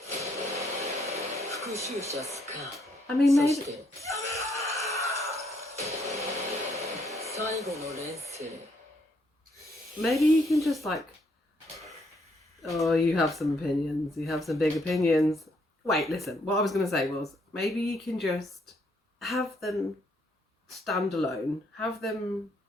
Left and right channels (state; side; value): normal; both; correlation 0.72